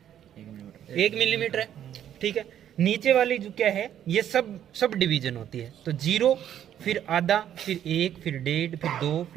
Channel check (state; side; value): quieter; left; 10.4 dB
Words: 1 मिलीमीटर है। ठीक है, नीचे वाली जो क्या है ये सब डिवीजन होती है। तो 0, फिर आधा, फिर 1, फिर 1.5, फिर 2,